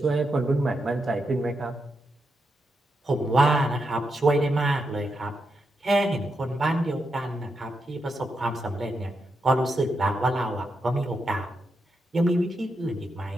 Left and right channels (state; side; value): normal; both; correlation 0.84